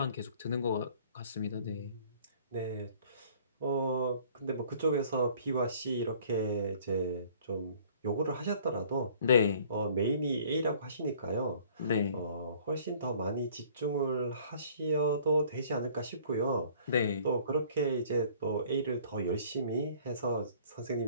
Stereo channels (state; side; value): inverted; both; correlation -0.54